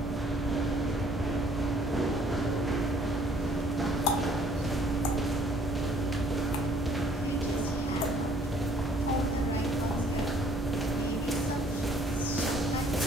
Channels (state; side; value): normal; both; correlation 0.60